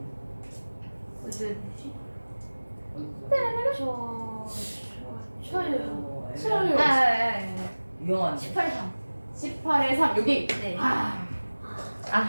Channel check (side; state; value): both; inverted; correlation -1.00